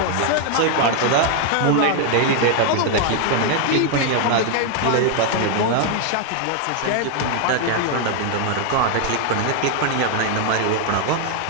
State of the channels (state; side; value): different; both; correlation 0.00